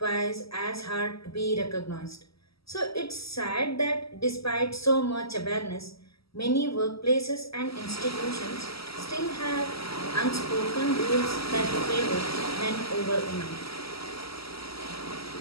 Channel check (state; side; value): late; right; 0.76 ms